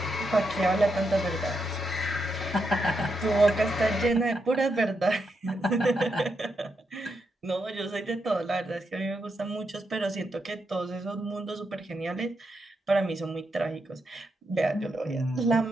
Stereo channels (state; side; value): normal; both; correlation 0.83